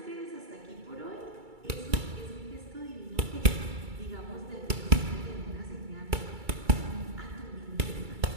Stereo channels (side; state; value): left; late; 2.3 ms